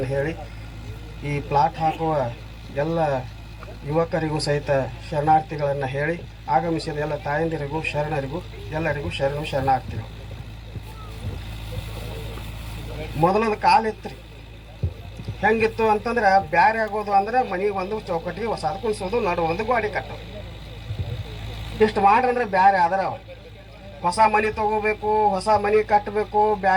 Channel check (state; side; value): identical; both; correlation 1.00